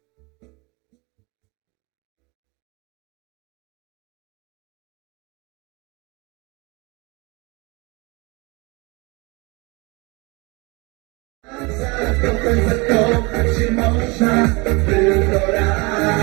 Zakochać się można tylko raz.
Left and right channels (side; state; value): left; quieter; 27.3 dB